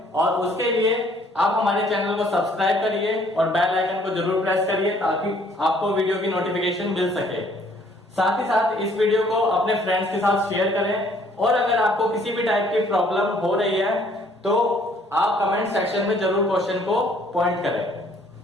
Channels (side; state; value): both; normal; correlation 0.61